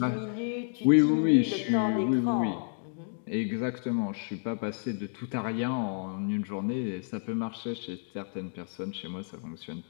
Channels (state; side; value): silent; right; digital silence